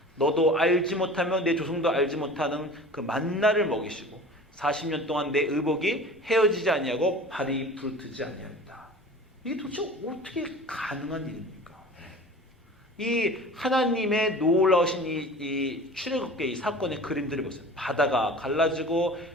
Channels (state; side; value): normal; both; correlation 0.40